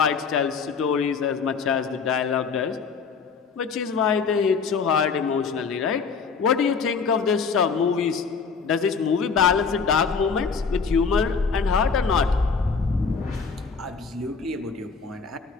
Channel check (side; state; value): right; quieter; 5.4 dB